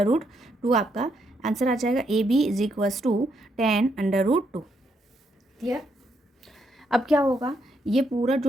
आपका आंसर आ जाएगा। AB is equals to 10 √2। Clear? अब क्या होगा, ये पूरा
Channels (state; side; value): normal; both; correlation 0.77